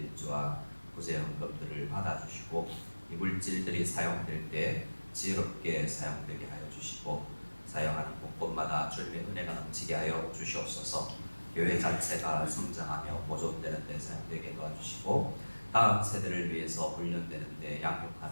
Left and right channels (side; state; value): both; inverted; correlation -1.00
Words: 구제 헌금들을 받아주시고 이 물질들이 사용될 때 지혜롭게 사용되게 하여 주시고 사용하는 곳곳마다 주님의 은혜가 넘치게 하여 주시옵소서. 교회 자체가 성장하며 보존되는 데 사용되게 도와주시고 다음 세대를 위해서 훈련되는 데